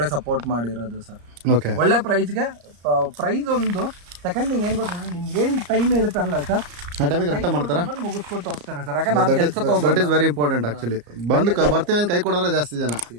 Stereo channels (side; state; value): left; late; 34 ms